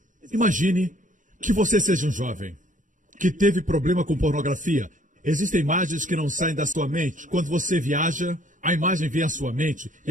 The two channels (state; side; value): late; left; 0.37 ms